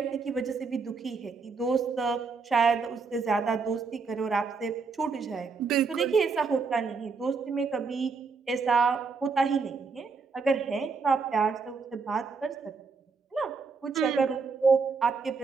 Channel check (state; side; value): quieter; left; 4.8 dB